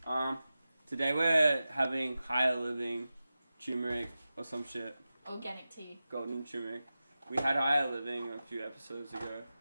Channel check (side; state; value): both; inverted; correlation -0.94